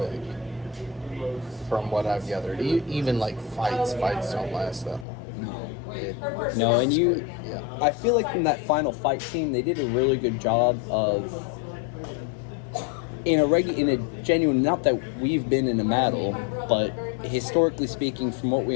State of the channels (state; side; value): drops out; right; at 5.1 s